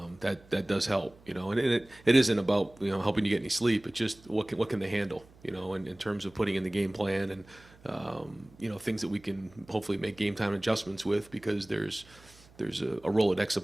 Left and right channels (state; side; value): noise; right; hum, 26 dB below the sound